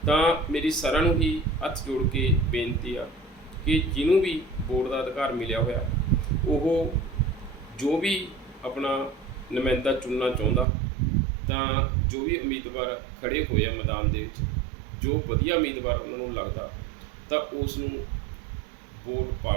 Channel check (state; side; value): drops out; left; at 10.7 s